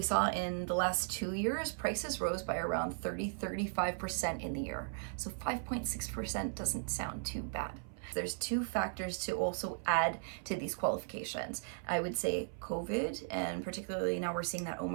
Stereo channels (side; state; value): left; silent; 53 dB below the other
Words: saw in the last 2 years, prices rose by around 35% in the year. So 5.6% doesn't sound too bad. There's 2 factors to also add to these qualifications. I would say COVID, and particularly now we're seeing that